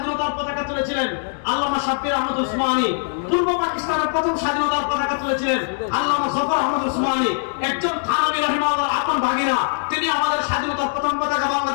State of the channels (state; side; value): silent; right; 61 dB below the other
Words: পতাকা তুলেছিলেন আল্লামা শাব্বির আহমদ উসমানী। পূর্ব পাকিস্তানের প্রথম স্বাধীনতার পতাকা তুলেছিলেন আল্লামা জফর আহমদ উসমানী। একজন থানভী রাহিমাহুল্লাহর আপন ভাগিনা, তিনি আমাদের স্বাধীনতার প্রথম পতাকা